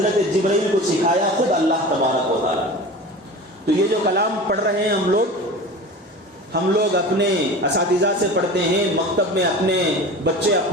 جبرائیل کو سکھایا خود اللہ تبارک و تعالیٰ۔ تو یہ جو کلام پڑھ رہے ہیں ہم لوگ اپنے اساتذہ سے پڑھتے ہیں، مکتب میں اپنے بچے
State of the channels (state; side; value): normal; both; correlation 0.35